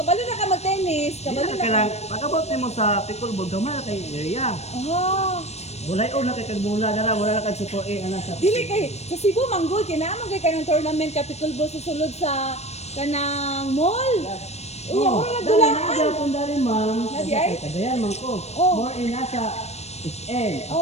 na ka mag-tennis, Dili kabalo na na ka. kailangan, pag abot mo sa pickleball, gamay na kay area. Ah, Bulay o na kay kag mula dara, wala na kag support ana sa. dili kay sa Cebu manggol kinaamon kay kanang tournament ka pickleball sa sulod sa kanang mall. Uy, ako na dali na dulaan. gyapon dali, ma'am. Nadi ay? Kagayan man ko. Oh. More in nasa SL,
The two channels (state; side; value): late; right; 0.31 ms